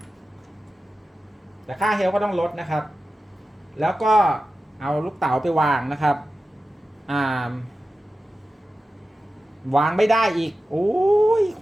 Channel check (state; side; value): normal; both; correlation 0.93